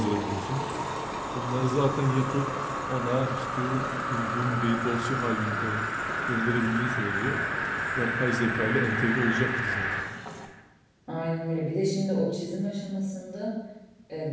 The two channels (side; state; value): both; identical; correlation 1.00